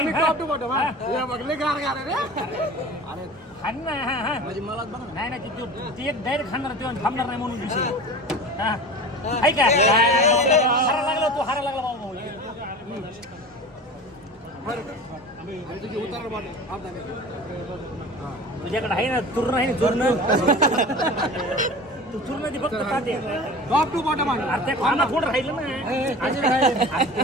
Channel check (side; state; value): both; normal; correlation 0.36